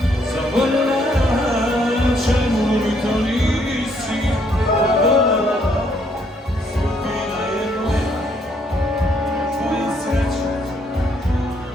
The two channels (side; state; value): both; normal; correlation 0.69